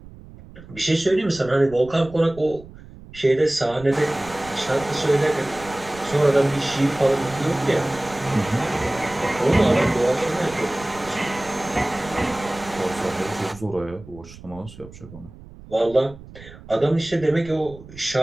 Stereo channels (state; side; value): noise; right; rumble, 18 dB below the sound